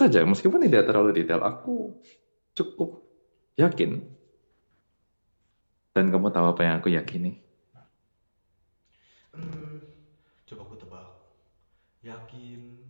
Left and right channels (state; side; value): inverted; both; correlation -1.00